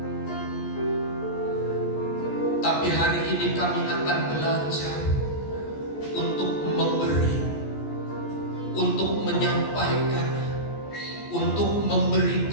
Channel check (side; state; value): right; late; 14 ms